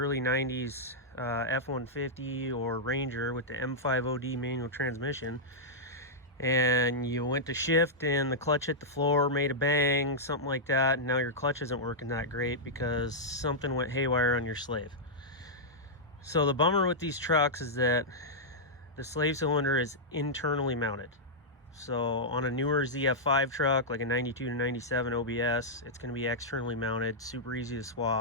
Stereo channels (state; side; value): normal; both; correlation -0.09